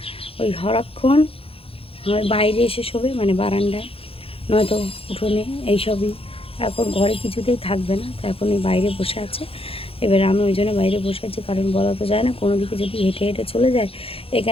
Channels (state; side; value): late; right; 0.27 ms